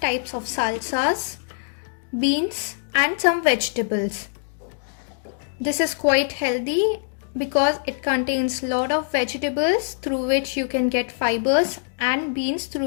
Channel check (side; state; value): right; silent; digital silence